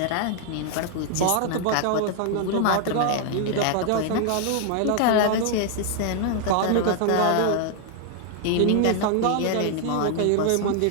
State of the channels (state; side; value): different; both; correlation 0.00